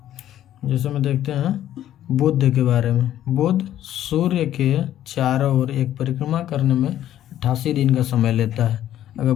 जैसे में देखते हैं बुध के बारे में। बुध सूर्य के चारों ओर एक परिक्रमा करने में 88 दिन का समय लेता है। अगर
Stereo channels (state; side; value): quieter; right; 12.0 dB